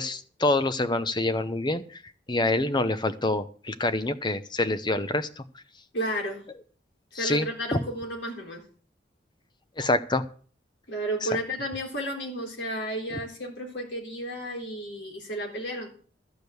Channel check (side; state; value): both; normal; correlation 0.33